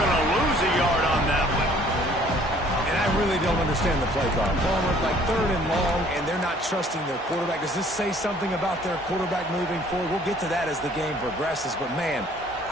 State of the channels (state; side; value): normal; both; correlation 0.57